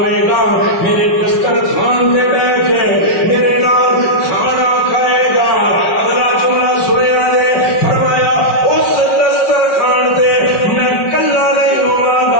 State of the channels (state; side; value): late; right; 5.4 ms